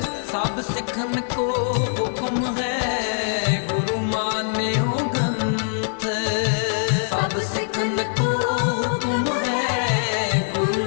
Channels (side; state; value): right; silent; digital silence